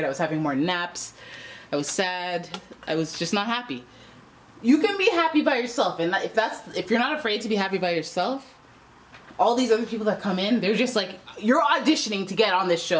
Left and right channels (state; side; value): identical; both; correlation 1.00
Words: I was having more naps. I was sad. I was just not happy. You can be happy by yourself, and if you're not afraid to be happy by yourself, all these other people that come in, they're just like, you're auditioning to get on this